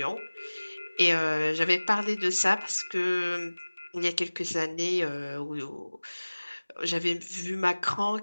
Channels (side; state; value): both; inverted; correlation -1.00